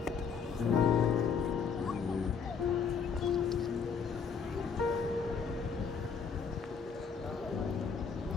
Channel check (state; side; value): quieter; right; 6.1 dB